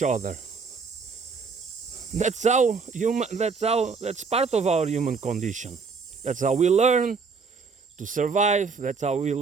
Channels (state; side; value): quieter; left; 5.0 dB